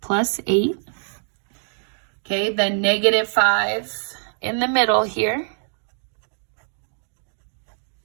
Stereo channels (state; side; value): silent; left; digital silence